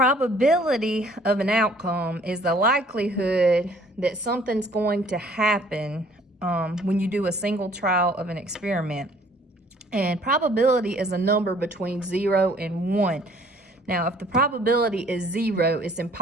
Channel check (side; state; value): both; normal; correlation 0.57